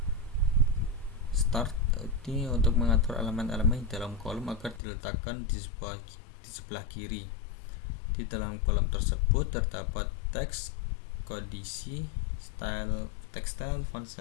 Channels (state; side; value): drops out; right; at 4.8 s